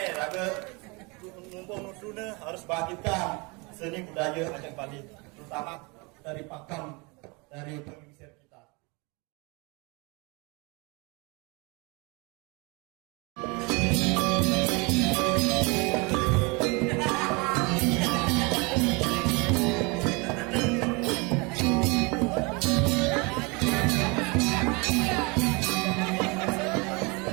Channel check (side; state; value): left; quieter; 28.5 dB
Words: raga numpang nuduna harus bangkitkan seni budaya Aceh Bali, terutama dari pakem, dari pengisir kita.